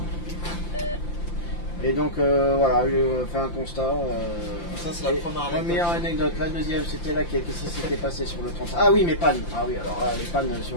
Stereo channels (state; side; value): late; right; 5.8 ms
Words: Et donc voilà, je fais un constat. Ça c'est la première anecdote. La deuxième, c'était là qu'est-ce qui s'était passé sur le 30. Ah oui, mes pannes. Ah oui, alors là, les pannes